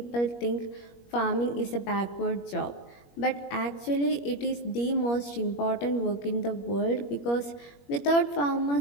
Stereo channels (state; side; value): late; right; 21 ms